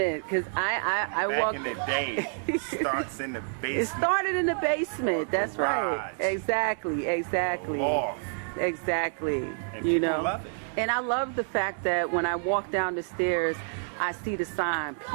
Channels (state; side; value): silent; left; 56 dB below the other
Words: because I Back in the day, it starts in the basement. It started in the basement. That's right. Exactly. Loft. Exactly. And you people know. love it. And I love the fact that when I walk down the stairs, I see the sign peace.